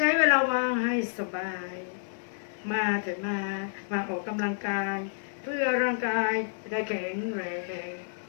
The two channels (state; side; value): silent; right; digital silence